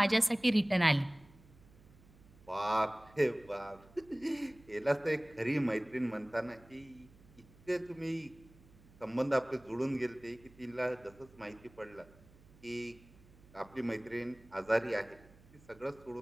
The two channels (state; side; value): noise; right; hum, 24 dB below the sound